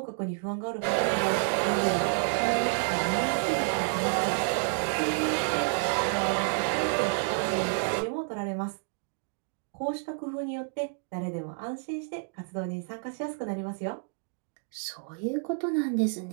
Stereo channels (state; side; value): silent; left; 58 dB below the other